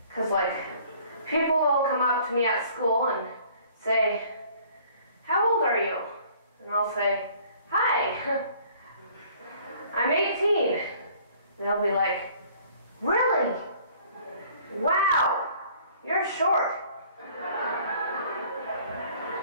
because like people will come up to me at school and say, "How old are you?" And I'll say, "Hi, I'm 18." They'll be like, "Really? Wow, you're short."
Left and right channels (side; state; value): both; inverted; correlation -0.56